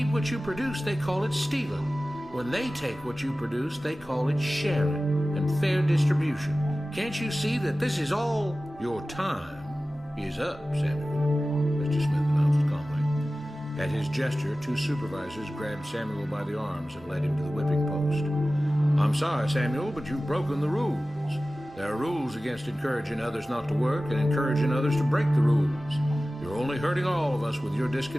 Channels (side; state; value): both; normal; correlation 0.96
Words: what you produce, they call it stealing. When they take what you produce, they call it sharing and fair distribution. Can't you see that this is all? Your time is up, Samuel, Mr. Smith announced calmly. At his gesture, 2 supervisors grabbed Samuel by the arms and led him to the whipping post. I'm sorry, Samuel, but you've broken the rules. There are rules against encouraging others not to work and encouraging others to break the rules. You're only hurting all of us with your